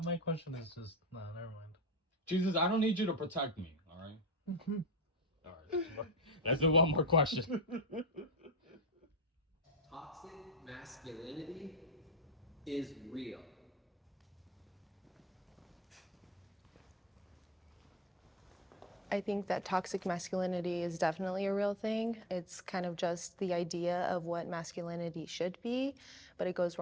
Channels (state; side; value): normal; both; correlation 0.31